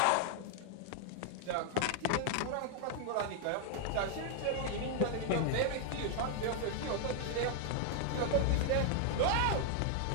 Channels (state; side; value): different; both; correlation 0.00